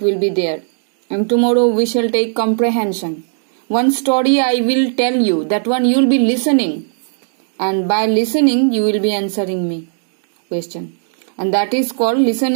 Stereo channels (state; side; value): silent; left; digital silence